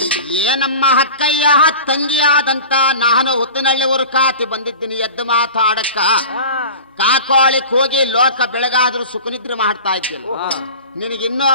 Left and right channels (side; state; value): both; inverted; correlation -0.37